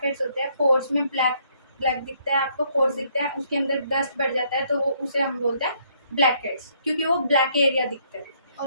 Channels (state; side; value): inverted; both; correlation -0.68